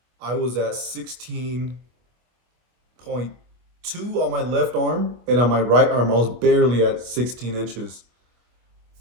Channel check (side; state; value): left; late; 25 ms